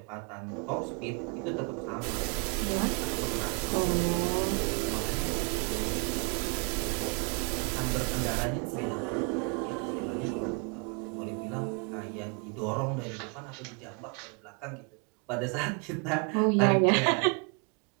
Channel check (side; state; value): left; quieter; 33.8 dB